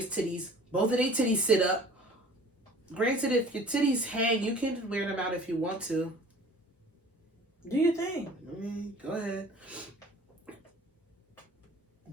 titties. Both of their titties sit up. Granted, if your titties hang, you can wear them out if you want to. Do you think? Go ahead.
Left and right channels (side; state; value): both; normal; correlation 0.48